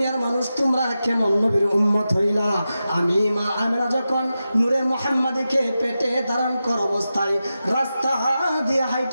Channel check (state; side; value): inverted; both; correlation -0.91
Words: মানুষ তোমরা কেমন নবীর উম্মত হইলা, আমি মা আমেনা যখন নূরে মুহাম্মাদিকে পেটে ধারণ কর অবস্থায় রাস্তা দিয়ে